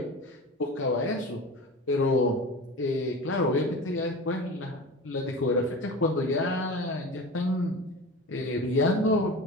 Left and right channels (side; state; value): both; normal; correlation 0.32